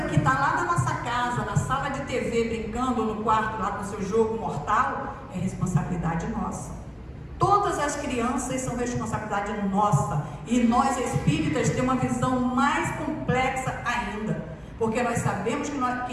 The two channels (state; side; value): identical; both; correlation 1.00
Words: que está lá na nossa casa, na sala de TV, brincando no quarto lá com seu jogo mortal, é responsabilidade nossa. Todas as crianças são responsabilidade nossa. E nós espíritas temos uma visão mais complexa ainda, porque nós sabemos